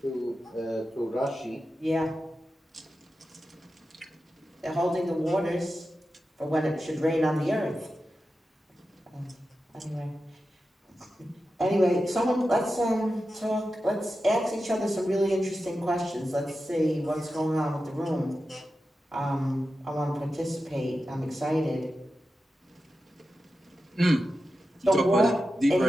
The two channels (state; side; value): normal; both; correlation 0.91